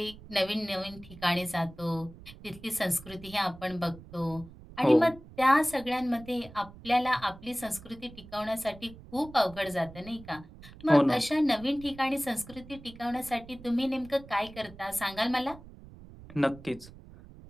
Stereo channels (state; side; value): noise; right; rumble, 18 dB below the sound